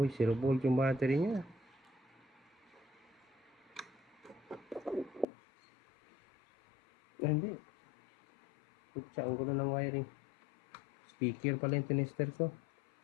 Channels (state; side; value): drops out; right; at 5.2 s